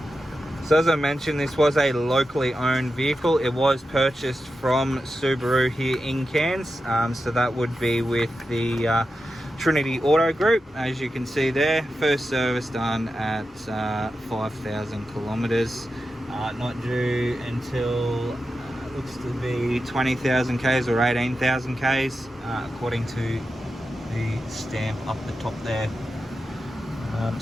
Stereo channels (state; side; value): normal; both; correlation 0.90